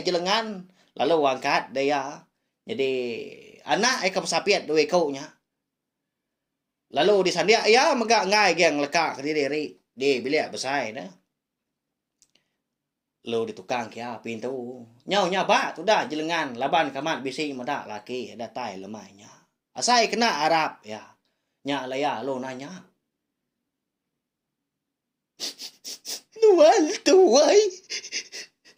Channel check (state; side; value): identical; both; correlation 1.00